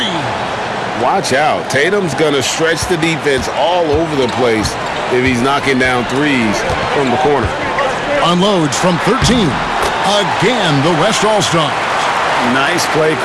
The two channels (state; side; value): identical; both; correlation 1.00